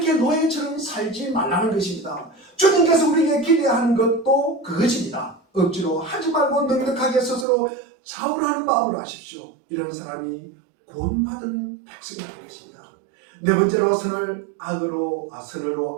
노예처럼 살지 말라는 것입니다. 주님께서 우리에게 기대하는 것도 그것입니다. 억지로 하지 말고 넉넉하게 스스로 자원하는 마음으로 하십시오. 이런 사람이 구원받은 백성이라는 것입니다. 네 번째로 선을 악으로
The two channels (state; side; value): drops out; left; at 7.5 s